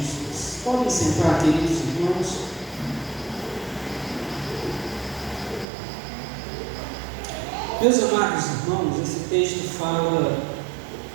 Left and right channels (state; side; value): drops out; left; at 5.7 s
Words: Podem sentar, queridos irmãos. Meus amados irmãos, esse texto fala